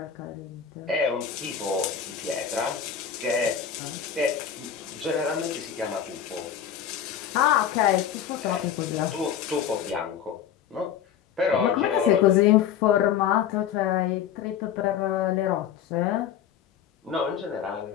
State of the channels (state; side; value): quieter; right; 8.9 dB